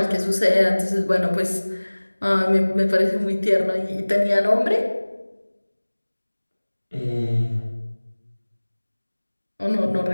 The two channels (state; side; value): inverted; both; correlation -1.00